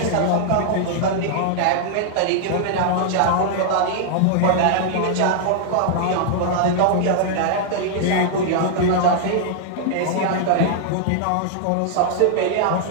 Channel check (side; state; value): both; different; correlation -0.01